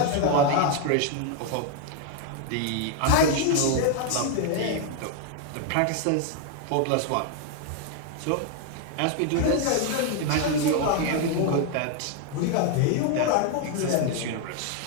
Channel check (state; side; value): different; both; correlation 0.00